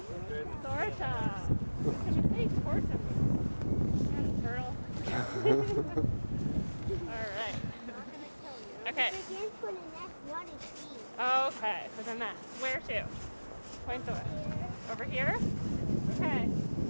Torta. Can you say torta? Turtle. All right. Okay. Okay, for the nest. Where to? Point the way. Over here? Okay.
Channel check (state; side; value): inverted; both; correlation -1.00